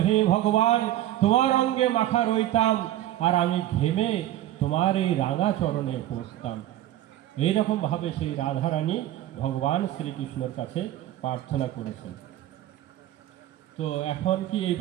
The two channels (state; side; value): quieter; left; 13.5 dB